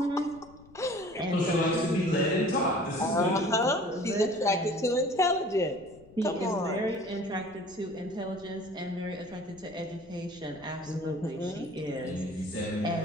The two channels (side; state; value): left; noise; rumble, 24 dB below the sound